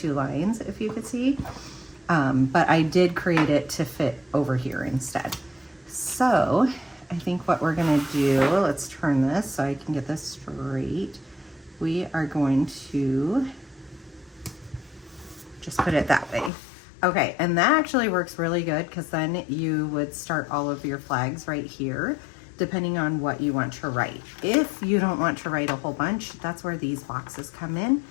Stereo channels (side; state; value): right; drops out; at 16.5 s